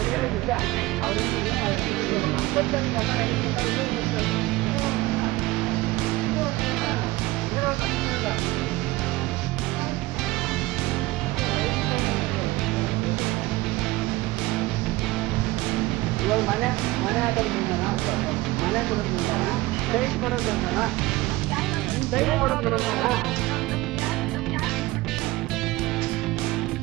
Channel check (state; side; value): quieter; left; 19.5 dB